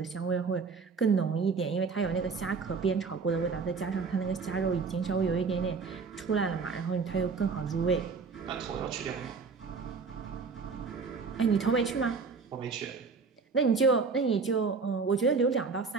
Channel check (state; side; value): quieter; left; 4.9 dB